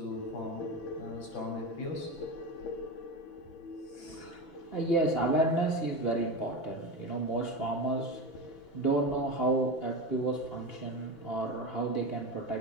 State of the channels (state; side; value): late; right; 6.0 ms